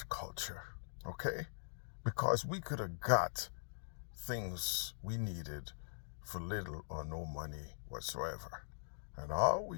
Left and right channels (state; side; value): silent; right; digital silence